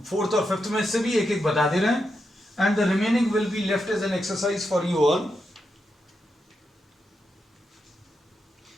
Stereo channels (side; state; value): both; normal; correlation 0.85